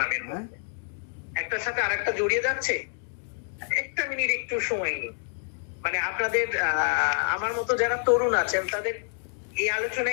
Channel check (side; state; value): right; silent; digital silence